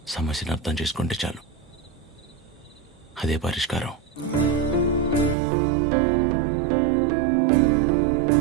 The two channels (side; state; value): left; drops out; at 5.4 s